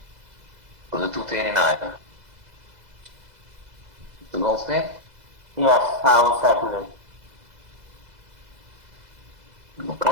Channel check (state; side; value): late; left; 2.0 ms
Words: for the 239. Mr. Goldstein? Yes, I will second it.